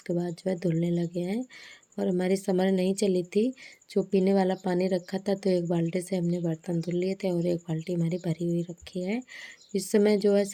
बाद जो है धुलने लगे हैं। और हमारी समर नहीं चली थी, जो पीने वाला पानी रखा था तो एक बाल्टी से हमने बर्तन धुल लिए थे और एक बाल्टी हमारी भरी हुई रखी है। इस समय जो है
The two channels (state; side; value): identical; both; correlation 1.00